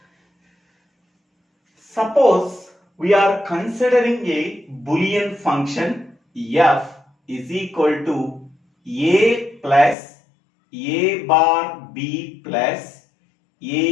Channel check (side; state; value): right; drops out; at 10.0 s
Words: Suppose we are considering a Boolean function f is equal to a plus a bar b plus